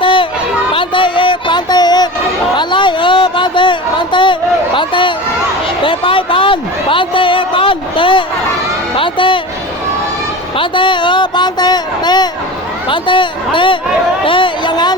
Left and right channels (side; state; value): both; normal; correlation 0.31